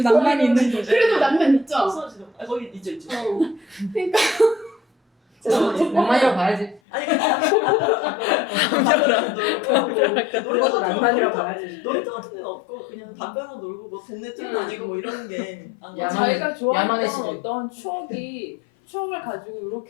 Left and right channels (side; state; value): right; drops out; at 6.8 s